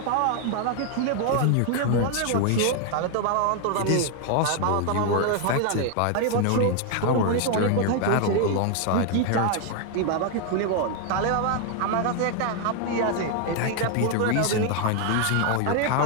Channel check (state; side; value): different; both; correlation 0.01